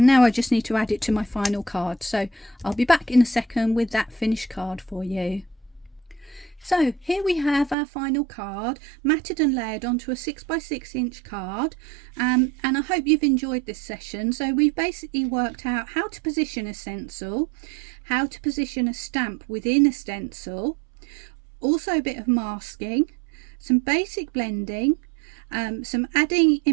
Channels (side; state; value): left; drops out; at 7.8 s